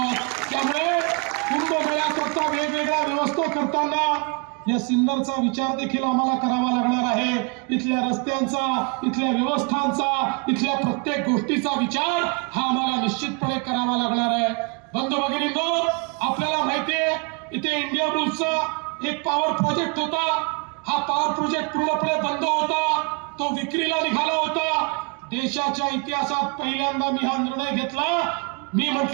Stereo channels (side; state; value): left; quieter; 33.5 dB